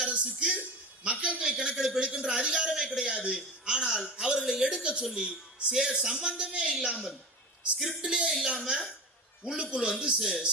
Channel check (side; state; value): both; normal; correlation 0.25